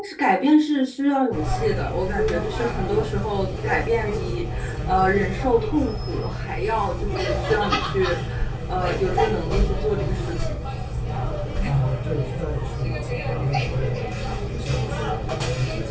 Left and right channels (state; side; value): identical; both; correlation 1.00